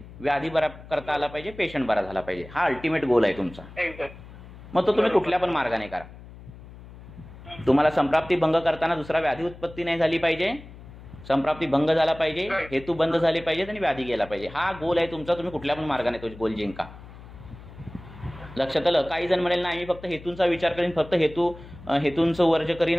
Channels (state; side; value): noise; left; hum, 17 dB below the sound